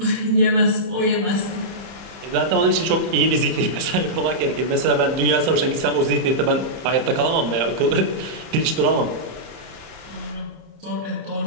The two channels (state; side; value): late; left; 31 ms